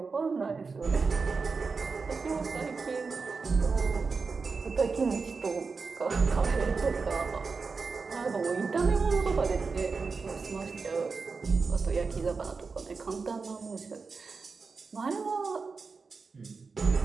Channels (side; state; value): left; quieter; 4.7 dB